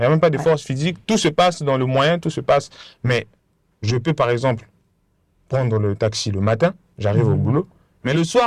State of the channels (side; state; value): both; identical; correlation 1.00